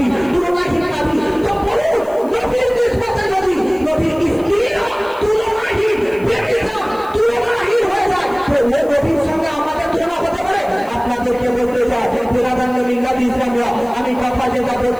বিরাদান্য মিল্লাত ইসলামিয়া, আমি কথা যেটা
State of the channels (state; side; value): noise; left; hiss, 25 dB below the sound